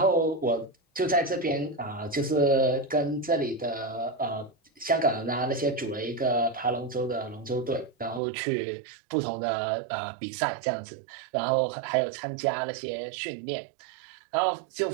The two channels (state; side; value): drops out; left; at 8.2 s